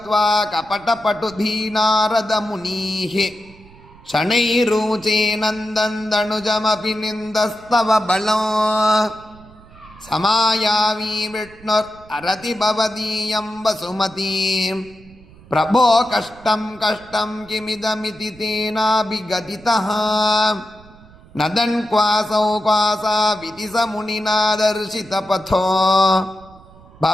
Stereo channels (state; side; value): noise; right; rumble, 24 dB below the sound